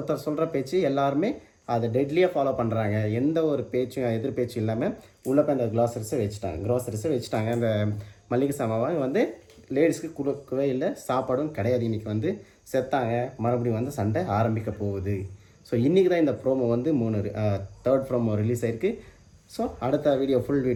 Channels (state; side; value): identical; both; correlation 1.00